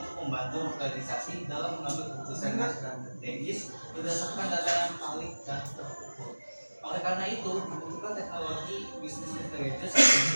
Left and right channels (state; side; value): inverted; both; correlation -1.00